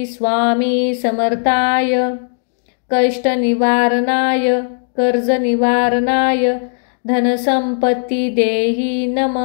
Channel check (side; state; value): right; silent; 56 dB below the other